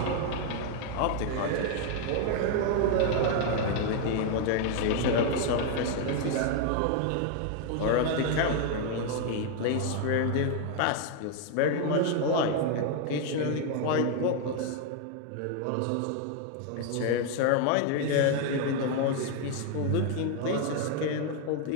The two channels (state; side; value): different; both; correlation 0.00